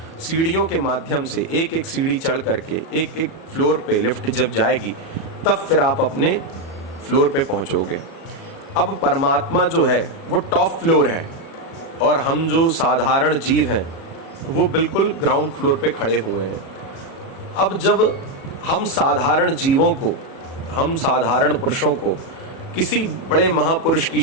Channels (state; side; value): late; right; 37 ms